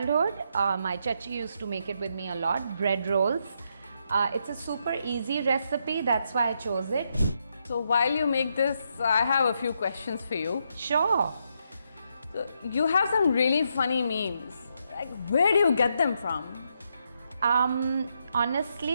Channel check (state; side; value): inverted; both; correlation -0.79